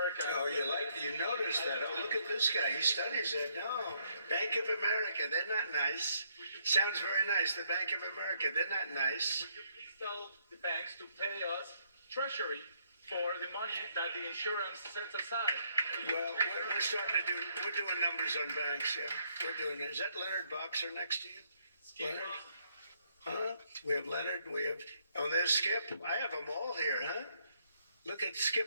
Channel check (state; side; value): inverted; both; correlation -0.72